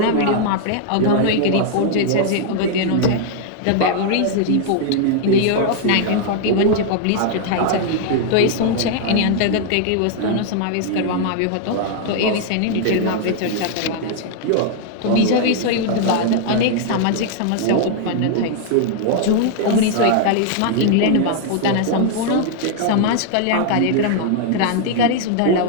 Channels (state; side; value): different; both; correlation -0.01